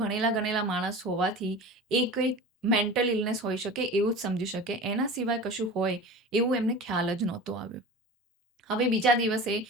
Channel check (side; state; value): both; normal; correlation 0.34